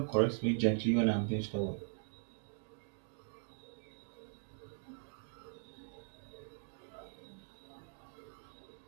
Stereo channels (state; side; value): silent; left; digital silence